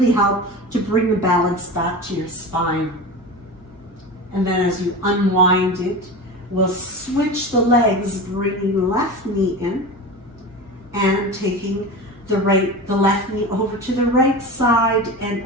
help to bring the balance back to your spine. And then as you unwind it, we'll switch the legs, bringing the left knee in and taking the left knee over to the right side and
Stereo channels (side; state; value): both; normal; correlation 0.28